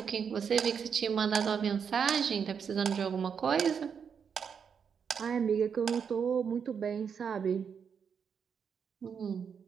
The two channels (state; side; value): quieter; left; 6.9 dB